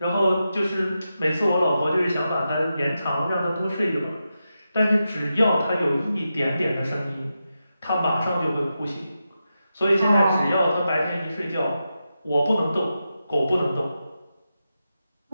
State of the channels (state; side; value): inverted; both; correlation -0.89